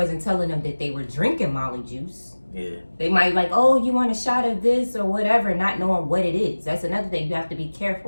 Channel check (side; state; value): both; inverted; correlation -1.00